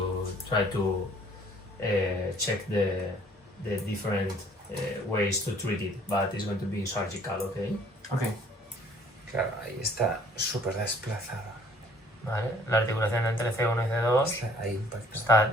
try to check the different ways to treat it, but it's going to be surgical, okay? Ok. Claro, ahí está súper desplazada. Vale, la articulación entre C1 y C2 Ahí impacta. está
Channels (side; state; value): both; normal; correlation 0.57